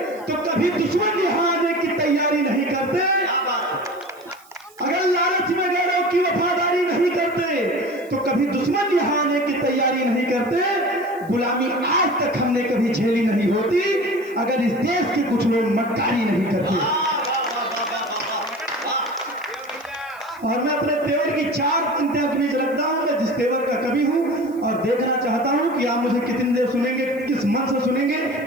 तो कभी दुश्मन यहाँ आने की तैयारी नहीं करते। अगर लालच में गैरों की वफादारी नहीं करते तो कभी दुश्मन यहाँ आने की तैयारी नहीं करते। गुलामी आज तक हमने कभी झेली नहीं होती अगर इस देश के कुछ लोग मक्कारी नहीं करते। और मैं अपने तेवर की 4 पंक्तियां के बीच रखता हूं। मैं जिस तेवर का कवि हूं और देखना चाहता हूं कि आप मुझे कितनी देर सुनेंगे, किस मन से सुनेंगे।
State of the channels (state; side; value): noise; right; hiss, 27 dB below the sound